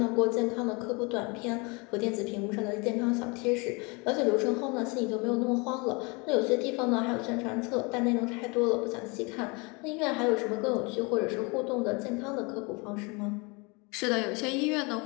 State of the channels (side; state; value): right; quieter; 29.2 dB